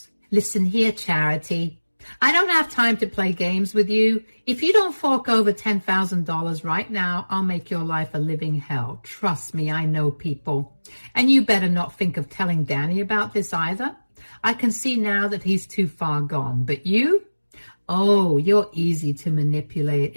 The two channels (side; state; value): both; inverted; correlation -1.00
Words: Listen here, Charity. I don't have time to play games with you. If you don't fork over $10,000 right now, I'll make your life a living hell. Trust me, I know people. And you better not think of telling Danny about this either. I can see now that he's too far gone. But you? Oh, you're easy to manipulate.